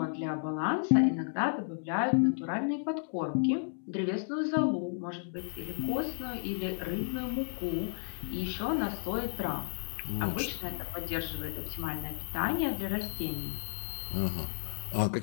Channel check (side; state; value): right; silent; digital silence